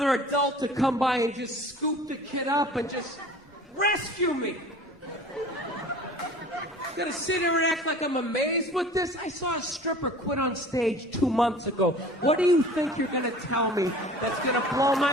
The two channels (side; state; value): both; normal; correlation 0.44